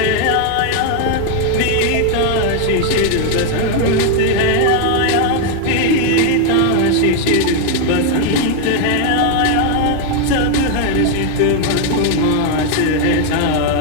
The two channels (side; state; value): both; different; correlation 0.00